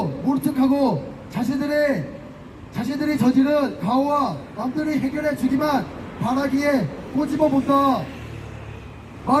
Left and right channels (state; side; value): identical; both; correlation 1.00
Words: 모른 척하고 자신들이 저지른 가오와 남들이 해결해 주기만 바라기에 꼬집어 본다.